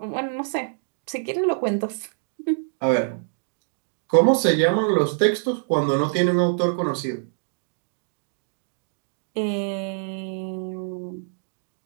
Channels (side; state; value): left; silent; digital silence